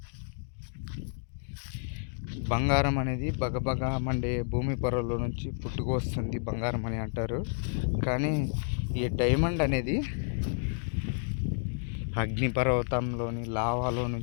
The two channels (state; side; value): silent; right; digital silence